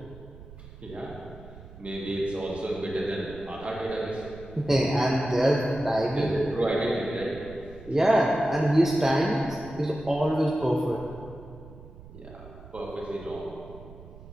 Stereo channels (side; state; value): right; noise; rumble, 17 dB below the sound